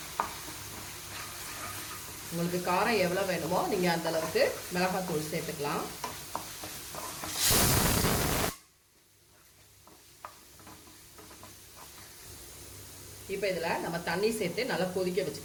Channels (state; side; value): identical; both; correlation 1.00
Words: உங்களுக்கு காரம் எவ்வளோ வேணுமோ நீங்கள் அந்த அளவுக்கு மிளகாத்தூள் சேர்த்துக்கலாம். இப்போ இதில் நம்ம தண்ணி சேர்த்து நல்லா கொதிக்க